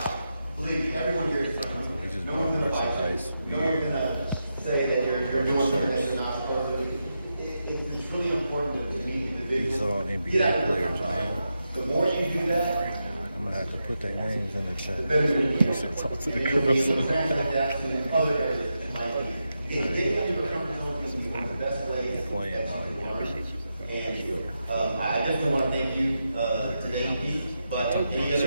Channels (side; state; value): both; inverted; correlation -0.87